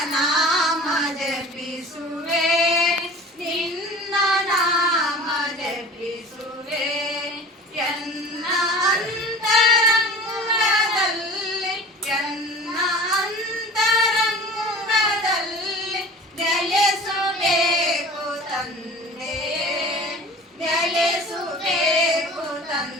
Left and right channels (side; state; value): both; normal; correlation 0.41